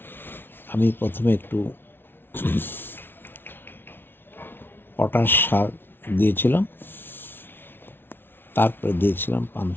আমি প্রথমে একটু পটাশ সার দিয়েছিলাম, তারপরে দিয়েছিলাম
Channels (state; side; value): late; right; 0.11 ms